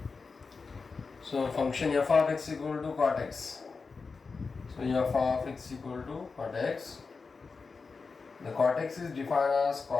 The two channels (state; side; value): quieter; right; 4.6 dB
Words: So function f of x equal to cot x. So f of x equal to cot x. The cot x is defined as